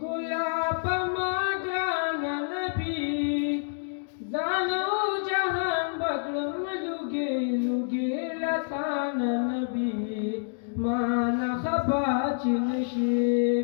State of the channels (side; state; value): right; silent; digital silence